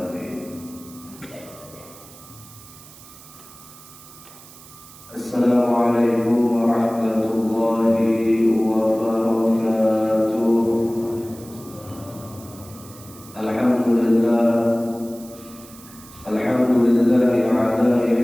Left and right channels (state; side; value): noise; right; hiss, 20 dB below the sound